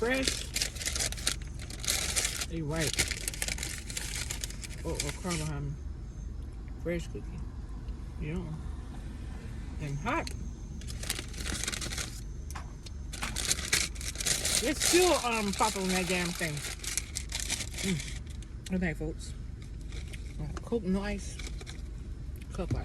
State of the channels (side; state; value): both; identical; correlation 1.00